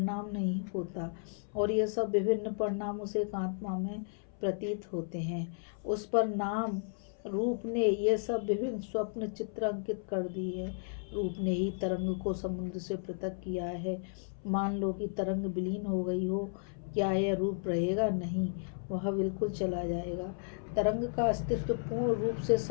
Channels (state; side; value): silent; right; 55 dB below the other